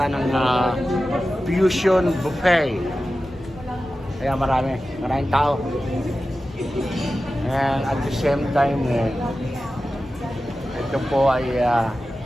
ng Fusion Buffet. Kaya maraming tao. And at the same time, ito po ay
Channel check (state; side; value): normal; both; correlation 0.94